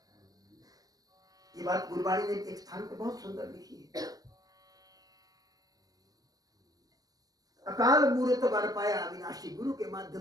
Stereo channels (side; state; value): left; late; 0.18 ms